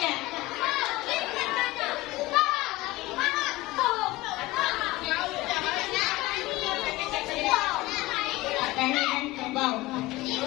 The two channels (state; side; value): quieter; right; 19.0 dB